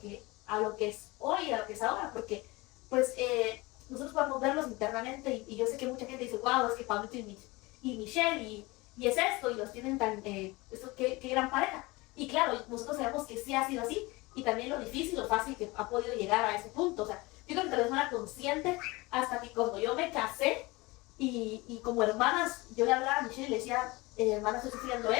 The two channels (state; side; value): quieter; right; 22.9 dB